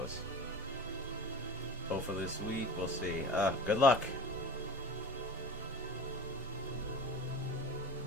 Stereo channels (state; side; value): normal; both; correlation 0.35